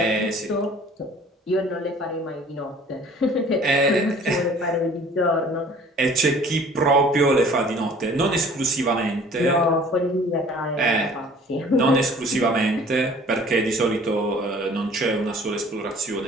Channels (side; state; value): both; normal; correlation 0.51